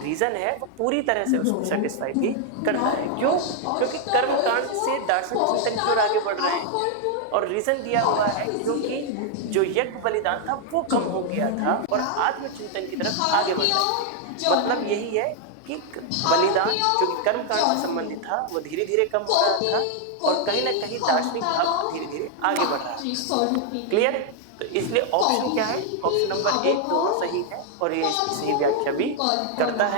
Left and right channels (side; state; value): both; different; correlation 0.00